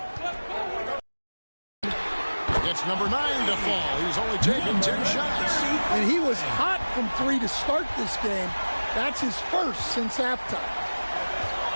It's number 9 to fall. He's only taken 10 shots. And he was hot from 3 to start this game. That's his first since halftime.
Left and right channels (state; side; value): inverted; both; correlation -1.00